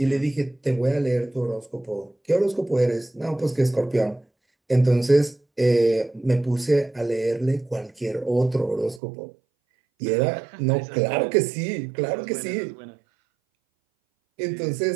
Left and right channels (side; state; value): left; drops out; at 9.0 s